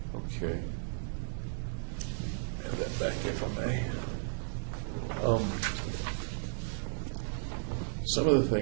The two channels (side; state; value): left; silent; 55 dB below the other